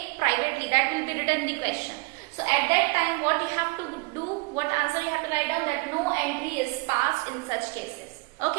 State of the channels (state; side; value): quieter; left; 27.6 dB